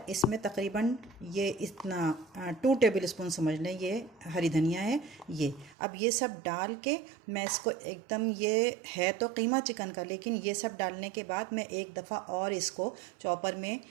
इसमें तकरीबन ये इतना 2 टेबल स्पून समझ लें, ये हरी धनिया है ये। अब ये सब डाल के मैं इसको एकदम, ये है तो कीमा चिकन का, लेकिन ये सब डालने के बाद मैं एक दफ़ा और इसको चॉपर में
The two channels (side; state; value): left; drops out; at 5.8 s